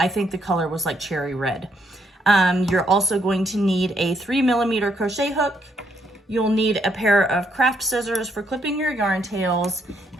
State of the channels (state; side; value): normal; both; correlation 0.74